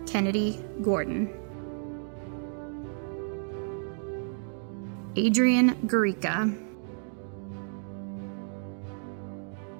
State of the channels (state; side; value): silent; left; 57 dB below the other